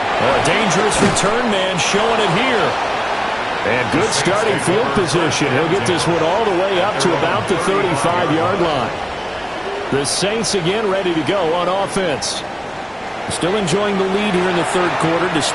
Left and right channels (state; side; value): identical; both; correlation 1.00